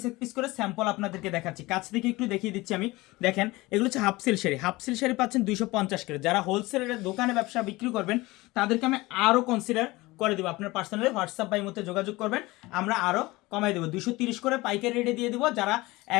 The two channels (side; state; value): right; quieter; 20.9 dB